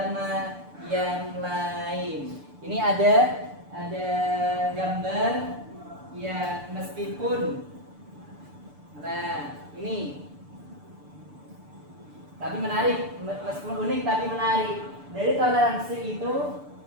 yang lain. Ini ada gambar ya, meskipun ini tapi menarik, meskipun unik tapi menarik. Dari toleransi itu,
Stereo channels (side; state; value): left; late; 6.8 ms